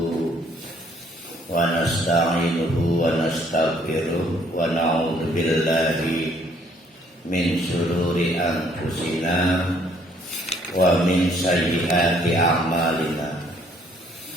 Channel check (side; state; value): both; normal; correlation 0.63